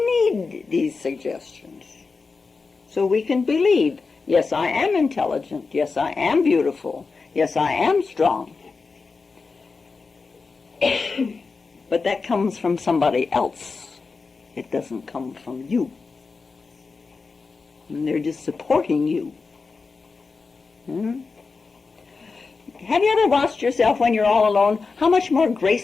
need these suggestions so we can believe, yes, I am intelligent. Yes, I am beautiful. Yes, I am strong. But that comes from somebody else. It doesn't come from you. And they're just supporting you. Have you ever watched yourself when you're all alone, how much more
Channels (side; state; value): right; quieter; 4.5 dB